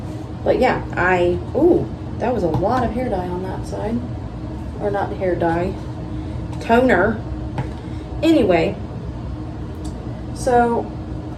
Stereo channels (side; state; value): both; identical; correlation 1.00